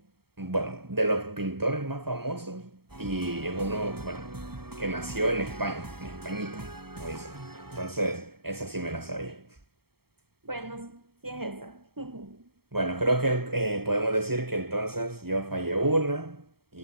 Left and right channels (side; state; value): left; late; 0.95 ms